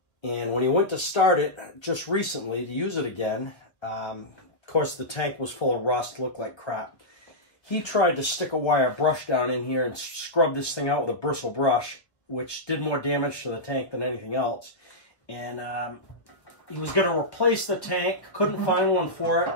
And when he went to start it just recently to use it again, of course the tank was full of rust, looked like crap. He tried to stick a wire brush down in here and scrub this thing out with a bristle brush, which did more damage to the tank than anything else. And he was going to replace the tank, couldn't find one for it,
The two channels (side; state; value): right; late; 1.3 ms